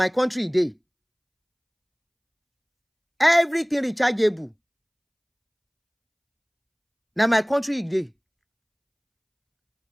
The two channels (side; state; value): both; identical; correlation 1.00